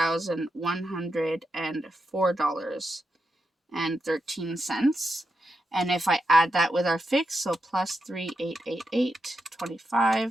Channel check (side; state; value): both; normal; correlation 0.86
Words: And if I add that with our fix, so plus 3,888.25,